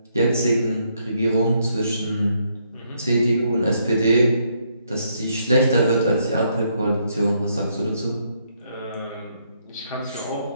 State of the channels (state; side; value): inverted; both; correlation -0.74